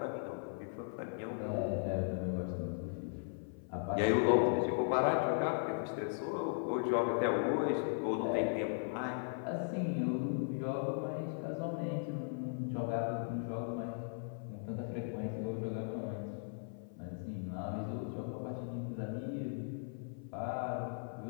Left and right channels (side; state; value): right; silent; 53 dB below the other